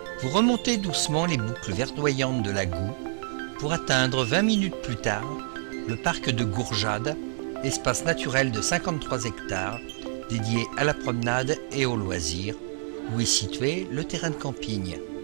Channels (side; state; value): left; silent; 60 dB below the other